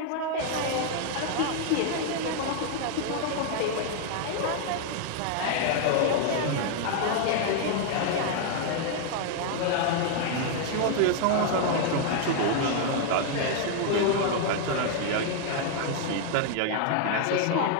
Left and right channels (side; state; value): both; different; correlation 0.00